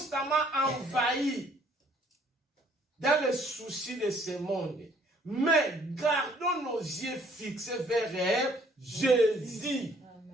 envahis dans les soucis de ce monde. Mais gardons nos yeux fixés vers Jésus.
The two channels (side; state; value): both; normal; correlation 0.62